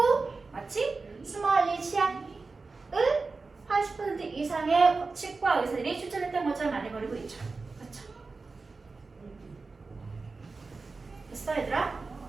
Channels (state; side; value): quieter; left; 4.0 dB